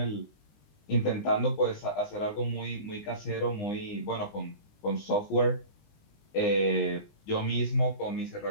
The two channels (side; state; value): right; late; 20 ms